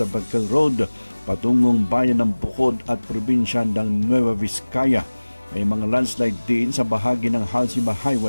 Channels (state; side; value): inverted; both; correlation -1.00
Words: Bagcal Road, patungong bayan ng Bukod at probinsya ng Nueva Vizcaya. May mga landslide din sa bahagi ng Halsima